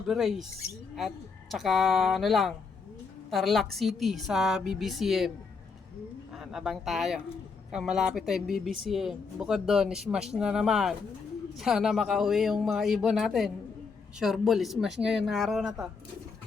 race. At tsaka Tarlac City sa BBCM. Abang tayo. Malapit tayong BBCM. Bukod doon, smash na naman. Sana makauwi yung mga ibon natin. Sure ball, smash ngayon na araw na to.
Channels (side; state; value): right; quieter; 5.0 dB